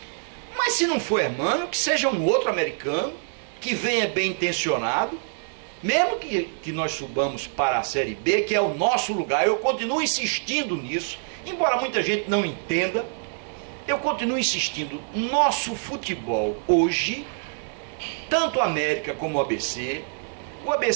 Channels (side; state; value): left; silent; digital silence